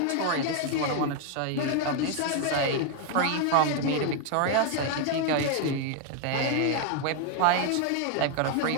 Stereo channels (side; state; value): both; different; correlation 0.01